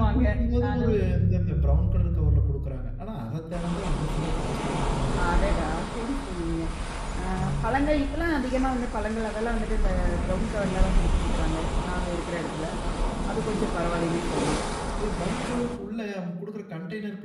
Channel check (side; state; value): both; identical; correlation 1.00